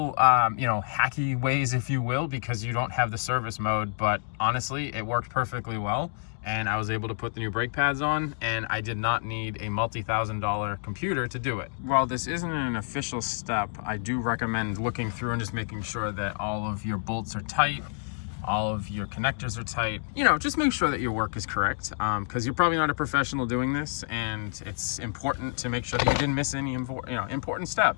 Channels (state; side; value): silent; right; digital silence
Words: hacky ways, if you will, because you don't have the service mode, but honestly, it worked perfectly well. And I was able to put the new brake pads on, and I did not need a multi-$1,000 computer to do it. While this isn't an official step, I do recommend looking through and just making sure that all of your bolts are tight, all of your connectors are tight. You know, just make sure that your work is correct, because you're probably not a professional doing this, and it's important to make sure that you didn't miss any important